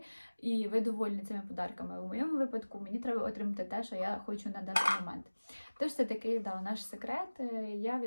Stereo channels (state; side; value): inverted; both; correlation -1.00